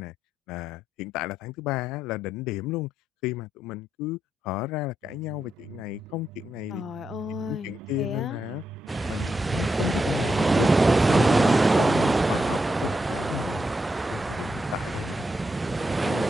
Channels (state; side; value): normal; both; correlation 0.83